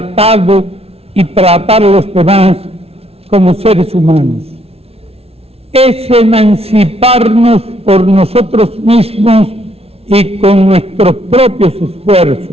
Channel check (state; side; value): late; left; 0.29 ms